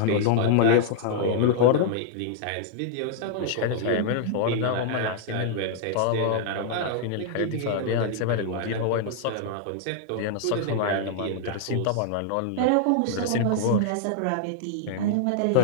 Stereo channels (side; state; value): both; different; correlation -0.01